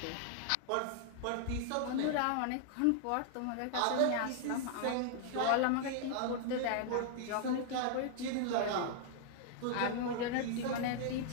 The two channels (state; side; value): different; both; correlation 0.00